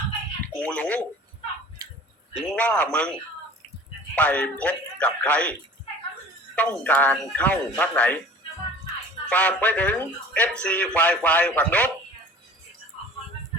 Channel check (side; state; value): both; normal; correlation 0.43